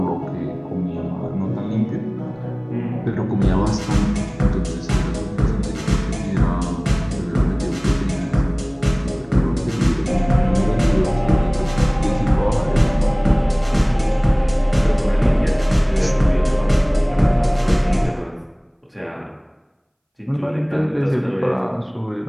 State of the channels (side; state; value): both; identical; correlation 1.00